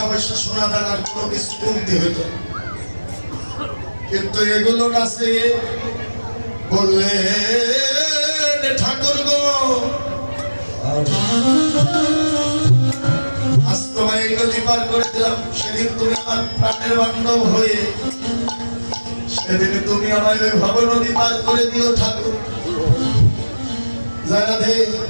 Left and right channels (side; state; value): both; inverted; correlation -1.00